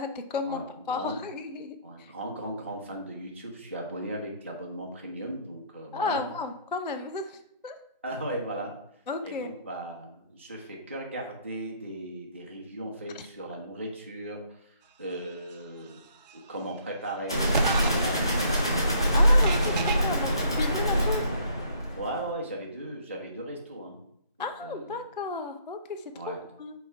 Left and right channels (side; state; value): both; inverted; correlation -0.61